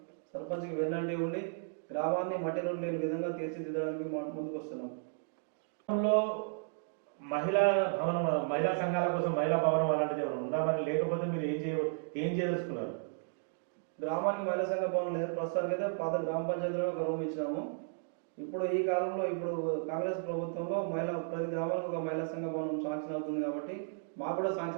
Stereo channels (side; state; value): left; silent; digital silence